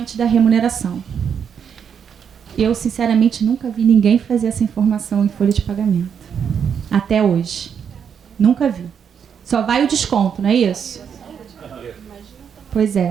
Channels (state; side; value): quieter; left; 7.5 dB